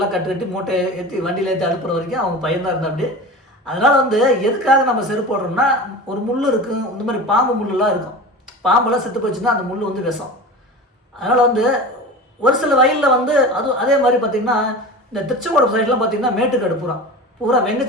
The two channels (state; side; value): normal; both; correlation 0.32